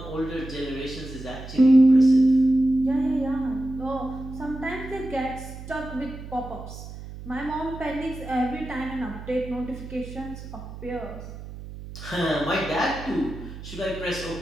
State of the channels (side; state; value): right; noise; hum, 12 dB below the sound